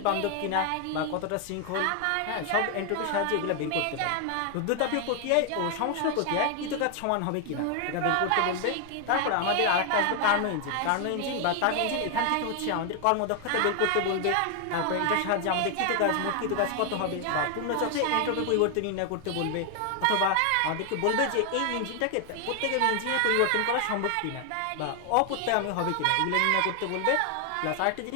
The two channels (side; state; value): both; different; correlation 0.00